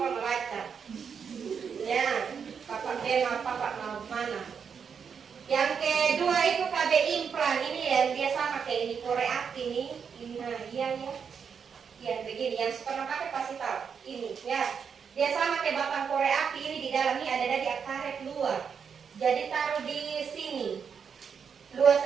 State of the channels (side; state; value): left; quieter; 6.7 dB